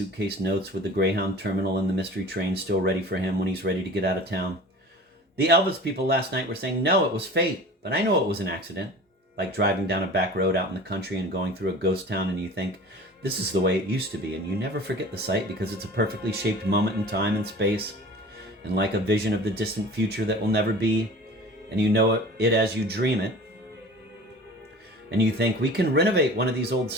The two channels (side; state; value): both; normal; correlation 0.41